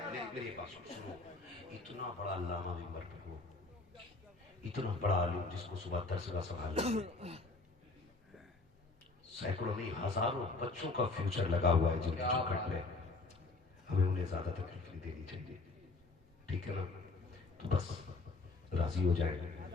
میری بات سنو, اتنا بڑا علامہ بھی مر ہو, اتنا بڑا عالم جس کو صبح درس کا سنبھالنا, سینکڑوں نہیں ہزاروں بچوں کا فیوچر لگا ہوا ہے جن کی چوکھٹ میں, ہمیں انہیں زیادہ تکلیف نہیں دینی چاہیے. ٹھیک ہے نا. تو بس راضی ہو جائیں.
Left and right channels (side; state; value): right; quieter; 3.6 dB